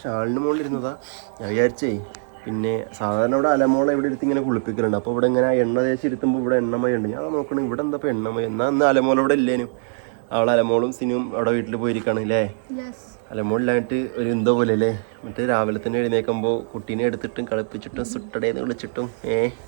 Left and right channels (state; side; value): silent; left; digital silence